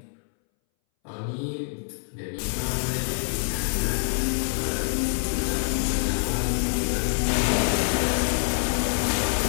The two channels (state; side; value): silent; right; 61 dB below the other